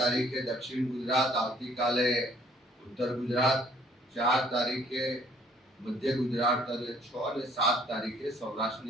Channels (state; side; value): normal; both; correlation 0.61